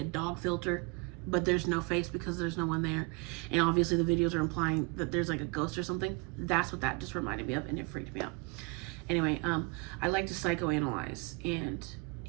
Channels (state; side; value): quieter; left; 29.0 dB